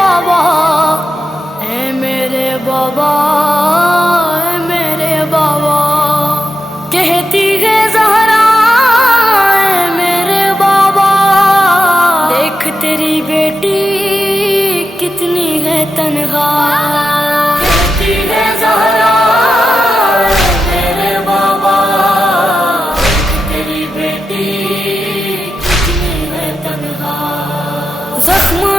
اے میرے بابا اے میرے بابا کہتی ہے زہرا اے میرے بابا دیکھ تیری بیٹی کتنی ہے تنہا کہتی ہے زہرا اے میرے بابا دیکھ تیری بیٹی کتنی ہے تنہا زخم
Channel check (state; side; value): normal; both; correlation 0.89